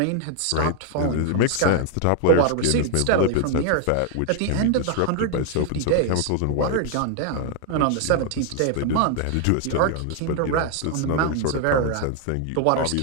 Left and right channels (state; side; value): different; both; correlation 0.00